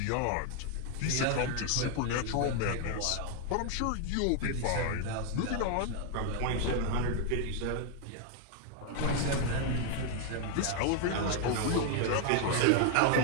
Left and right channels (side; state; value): both; different; correlation 0.00